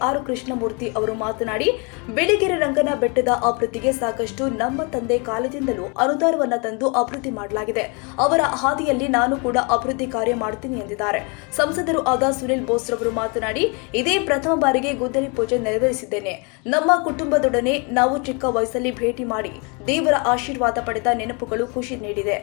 ಕೃಷ್ಣಮೂರ್ತಿ ಅವರು ಮಾತನಾಡಿ, ಬಿಳಿಗಿರಿ ರಂಗನ ಬೆಟ್ಟದ ಅಭಿವೃದ್ಧಿಗೆ ಸಾಕಷ್ಟು ನಮ್ಮ ತಂದೆ ಕಾಲದಿಂದಲೂ ಅನುದಾನವನ್ನು ತಂದು ಅಭಿವೃದ್ಧಿ ಮಾಡಲಾಗಿದೆ. ಅವರ ಹಾದಿಯಲ್ಲಿ ನಾನು ಕೂಡ ಅಭಿವೃದ್ಧಿ ಕಾರ್ಯ ಮಾಡುತ್ತೀನಿ ಎಂದಿದ್ದಾರೆ. ಸಂಸದರು ಆದ ಸುನಿಲ್ ಬೋಸ್ ರವರು ಮಾತನಾಡಿ, ಇದೇ ಪ್ರಥಮ ಬಾರಿಗೆ ಗುದ್ದಲಿ ಪೂಜೆ ನೆರವೇರಿಸಿದ್ದೇನೆ. ನಮ್ಮ ಕುಟುಂಬದೊಡನೆ ನಾವು ಚಿಕ್ಕ ವಯಸ್ಸಲ್ಲಿ ಭೇಟಿ ಮಾಡಿ ದೇವರ ಆಶೀರ್ವಾದ ಪಡೆದ ನೆನಪುಗಳು ಖುಷಿ ನೀಡಿದೆ.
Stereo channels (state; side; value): quieter; right; 32.7 dB